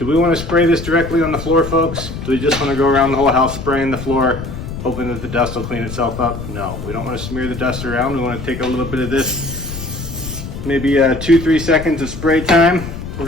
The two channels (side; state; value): left; noise; rumble, 8 dB below the sound